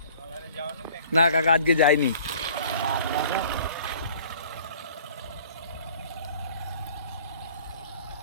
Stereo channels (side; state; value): both; inverted; correlation -0.51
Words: না কাকা, আজকে যাইনি।